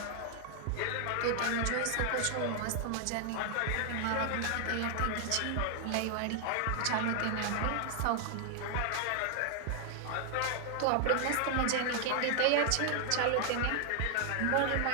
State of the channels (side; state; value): both; different; correlation 0.00